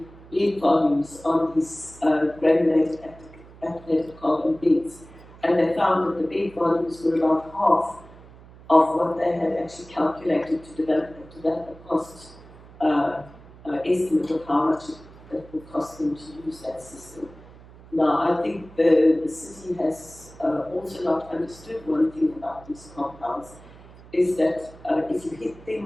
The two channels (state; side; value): noise; right; hum, 21 dB below the sound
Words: bed volumes on these granulated activated carbon beds, and they found that the bed volumes were about half of what they had actually calculated to develop a cost estimate of how much it would cost them to use that system. Now, I think the city has also not understood one thing about these compounds, is that if you hit